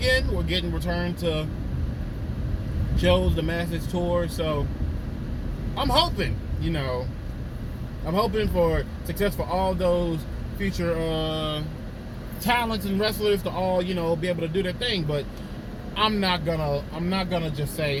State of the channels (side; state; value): both; identical; correlation 1.00